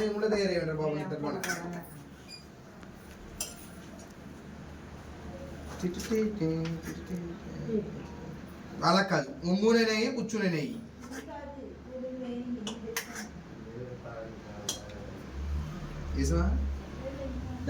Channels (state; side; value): identical; both; correlation 1.00